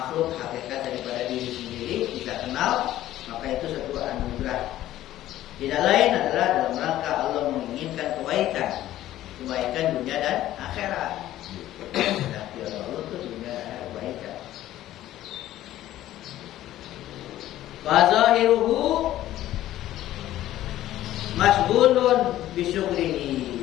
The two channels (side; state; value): right; quieter; 13.8 dB